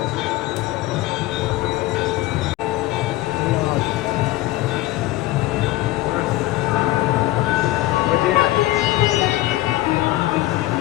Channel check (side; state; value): right; quieter; 16.9 dB